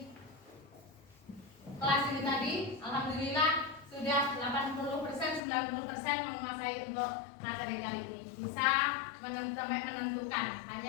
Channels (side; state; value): right; drops out; at 5.4 s